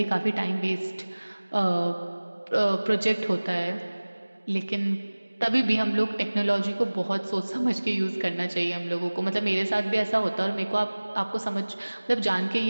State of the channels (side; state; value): both; inverted; correlation -1.00